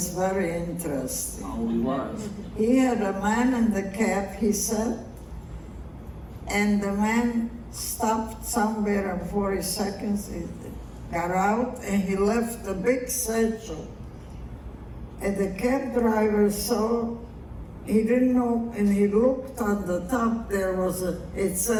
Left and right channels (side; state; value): both; identical; correlation 1.00